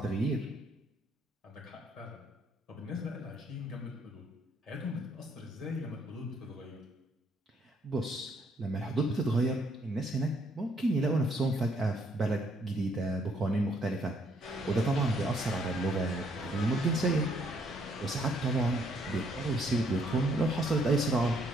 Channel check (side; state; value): both; normal; correlation 0.69